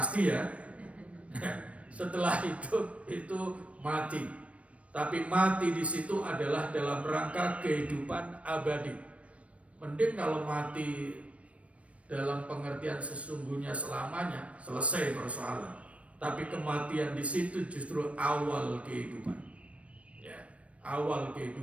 ya. Setelah hidup itu mati. Tapi mati di situ adalah dalam rangka kehidupan abadi. Mending kalau mati dalam pengertian sesungguhnya selamanya, selesai persoalan. Tapi kematian di situ justru awal kehidupan. Awal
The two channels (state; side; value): late; left; 0.064 ms